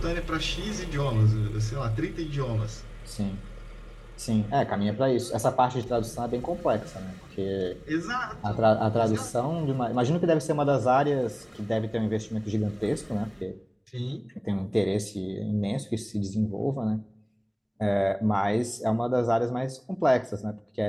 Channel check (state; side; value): identical; both; correlation 1.00